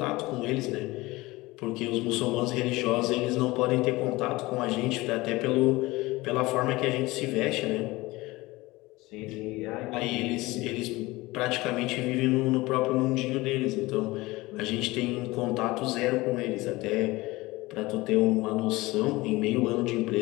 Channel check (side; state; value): right; quieter; 20.7 dB